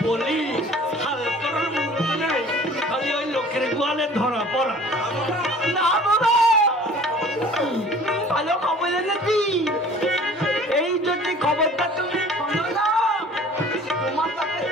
বলি হাল করার মতো নেই খালি ওই লোকের গোয়ালে ধরা পড়া না বাবা ভালো খবর এনেছি এই যদি খবরটা তুমি শোনো না তোমার সাথে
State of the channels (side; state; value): both; normal; correlation 0.48